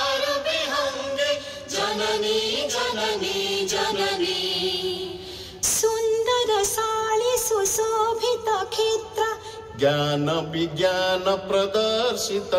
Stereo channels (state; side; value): identical; both; correlation 1.00